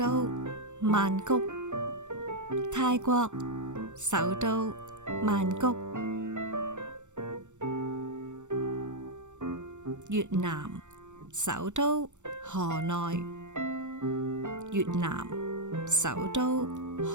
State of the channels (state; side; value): late; left; 0.84 ms